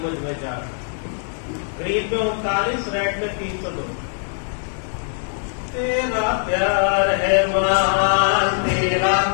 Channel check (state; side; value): silent; right; 65 dB below the other